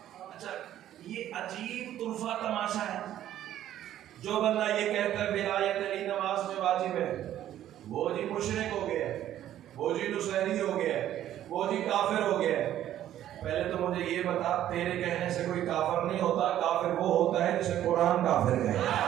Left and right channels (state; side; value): quieter; left; 12.0 dB